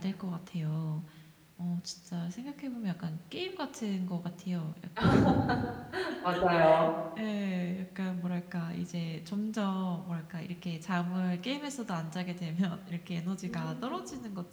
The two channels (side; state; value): both; identical; correlation 1.00